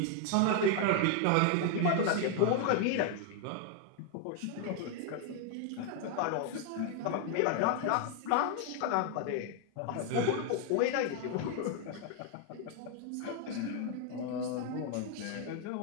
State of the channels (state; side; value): different; both; correlation 0.00